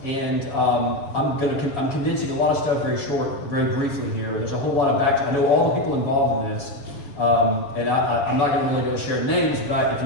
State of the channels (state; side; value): late; right; 7.1 ms